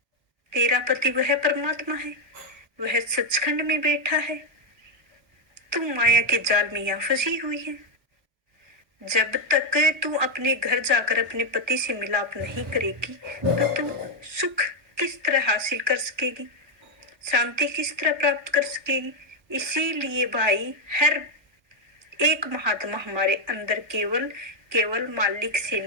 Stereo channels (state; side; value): normal; both; correlation 0.02